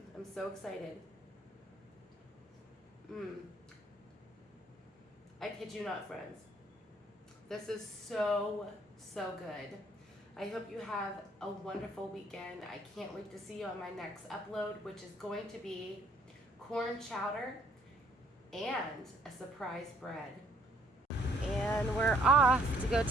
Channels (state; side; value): normal; both; correlation 0.64